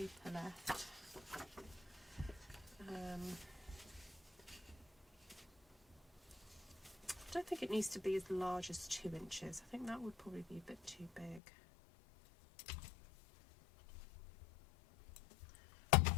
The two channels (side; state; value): right; drops out; at 11.4 s